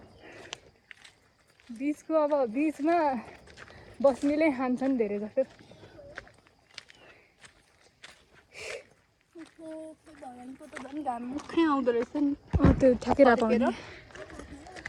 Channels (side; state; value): both; identical; correlation 1.00